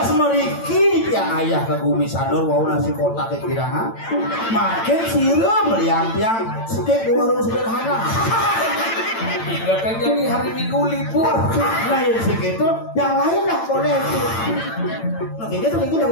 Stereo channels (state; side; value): late; right; 8.9 ms